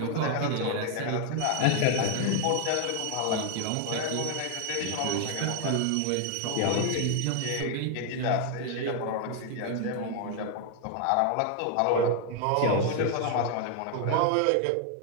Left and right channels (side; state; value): both; different; correlation 0.00